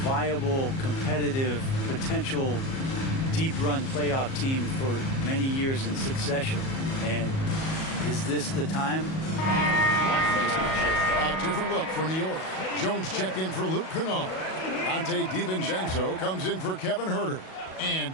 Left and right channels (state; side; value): late; right; 37 ms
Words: viable, competitive, potential deep-run playoff team for many years in succession. And is this the time? I'm just not sure. A different look for New York. Jones checked in for Luke Kennard. Dante DiVincenzo comes in for Kevin Herter. And